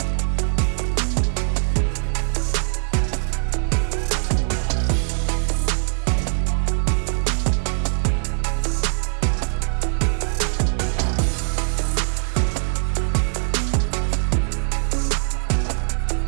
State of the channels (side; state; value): left; silent; digital silence